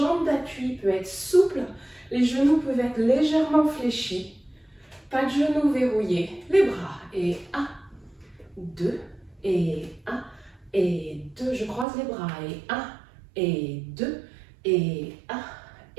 d'appui peut être souple. Les genoux peuvent être légèrement fléchis. Pas de genoux verrouillés. Les bras. Et un, deux et un et deux. Je croise les bras. Et un et deux et un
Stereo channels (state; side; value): drops out; left; at 11.9 s